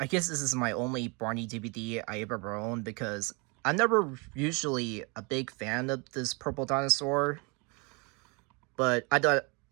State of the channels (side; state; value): left; quieter; 30.2 dB